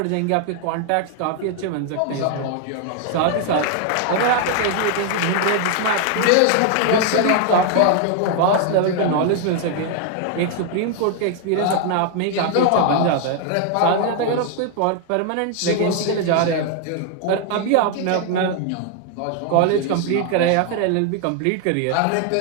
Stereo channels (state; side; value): different; both; correlation 0.00